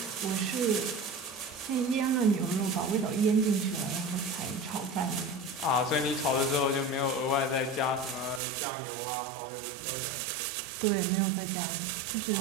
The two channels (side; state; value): left; drops out; at 8.4 s